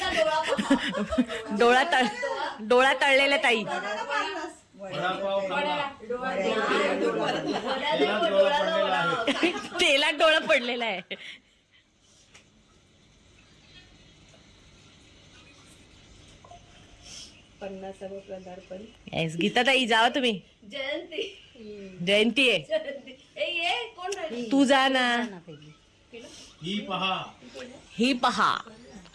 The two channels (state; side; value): identical; both; correlation 1.00